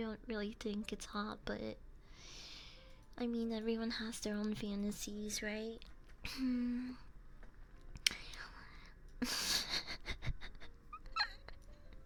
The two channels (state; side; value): identical; both; correlation 1.00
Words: really think it's hot, but I mean everyone has their own fantasies, right?